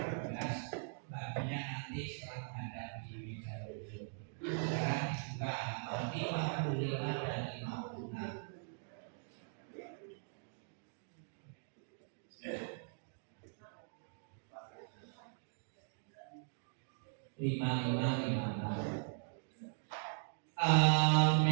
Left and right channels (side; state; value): left; silent; digital silence